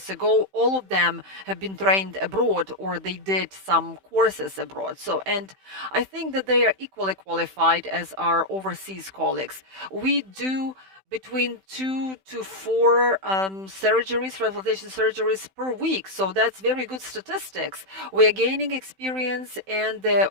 ago. All of them have been trained abroad or they did some courses abroad. So, and I think that they are equally qualified as our overseas colleagues. We do between 2 to 4 surgeries, transplantation surgeries per week. So that's very good statistics. We are gaining experience and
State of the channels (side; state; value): left; late; 16 ms